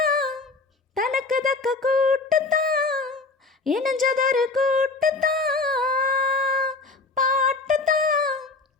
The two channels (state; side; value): quieter; right; 3.7 dB